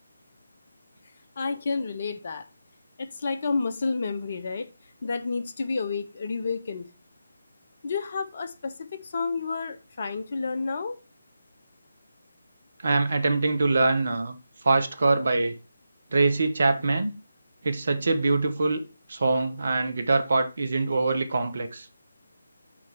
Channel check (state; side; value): inverted; both; correlation -0.88